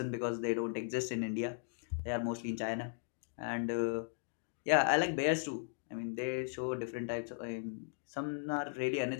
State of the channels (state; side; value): silent; right; digital silence